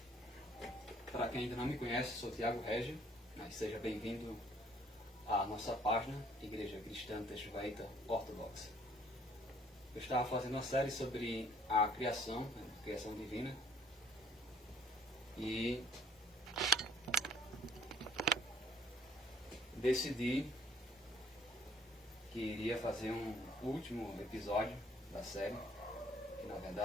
Para quem ainda não me conhece, sou Thiago Régio, mas seja bem-vindo à nossa página Igreja Cristã Teixuaíta Ortodoxa. Eu estava fazendo uma série sobre a criação, a criação divina, e decidi que iria fazer um último episódio da série, que na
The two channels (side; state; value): both; normal; correlation 0.59